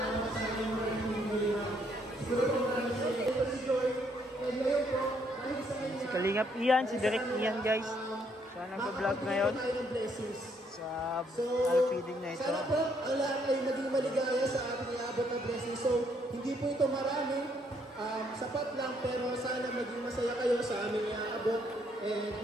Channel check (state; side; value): normal; both; correlation 0.70